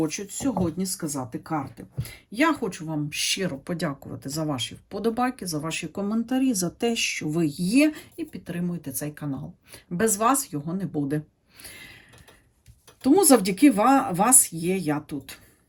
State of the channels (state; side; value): identical; both; correlation 1.00